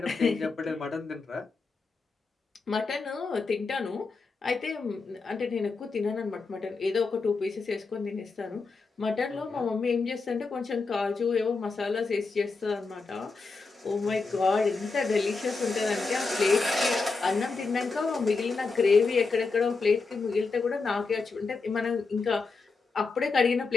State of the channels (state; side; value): quieter; right; 4.2 dB